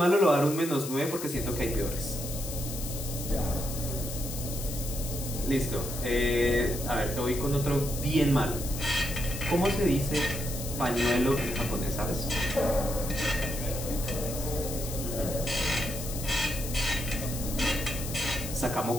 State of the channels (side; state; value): left; noise; hiss, 8 dB below the sound